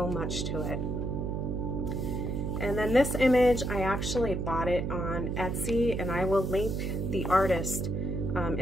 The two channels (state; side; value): noise; right; hum, 1 dB below the sound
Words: much to it. And then this image, I actually bought it on Etsy, and I will link the artist